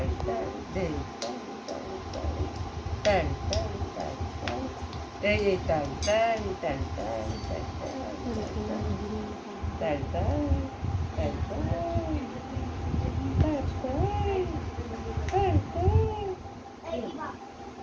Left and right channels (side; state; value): both; identical; correlation 1.00